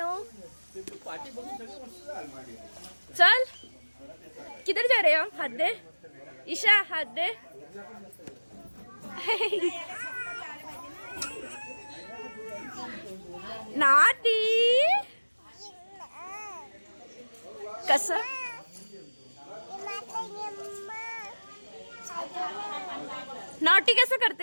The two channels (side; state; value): both; inverted; correlation -1.00